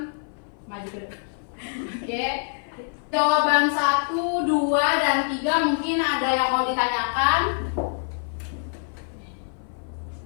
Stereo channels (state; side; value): silent; right; 57 dB below the other